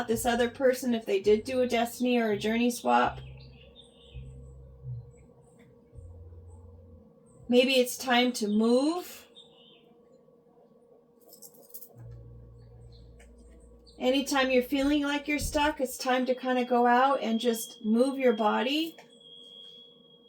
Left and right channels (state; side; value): identical; both; correlation 1.00